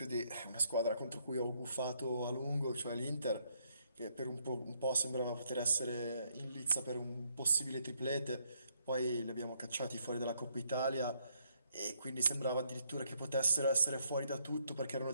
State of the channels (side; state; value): both; inverted; correlation -0.72